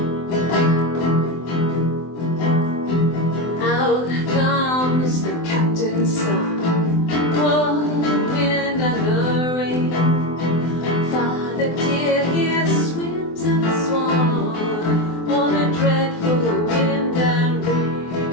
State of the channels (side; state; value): right; late; 24 ms